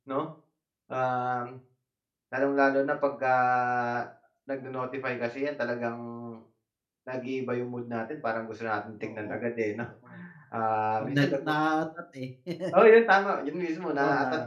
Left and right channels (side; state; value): both; identical; correlation 1.00